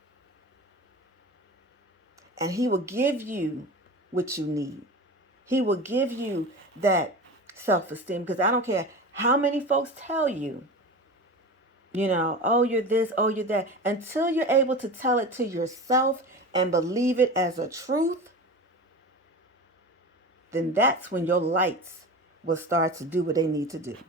And he will give you what you need. He will give you that self-esteem, because I don't care how many folks tell you, oh, you're this, oh, you're that. Until you're able to tell it to yourself and believe it as a truth, then that's when your lights will start to do what they need to do.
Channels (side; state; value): both; normal; correlation 0.30